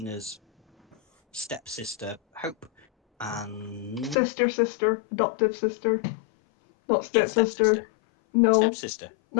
stepsister, Hope, and Sister, adoptive sister. Not yeah, stepsister. stepsister. No, Stepsister.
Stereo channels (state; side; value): drops out; right; at 4.2 s